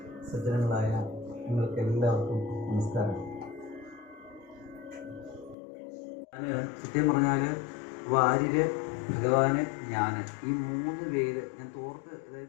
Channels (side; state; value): right; drops out; at 5.6 s